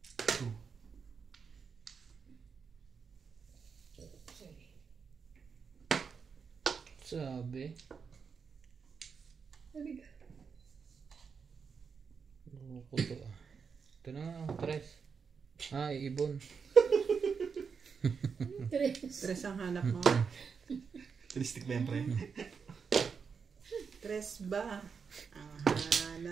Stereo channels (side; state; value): left; quieter; 5.9 dB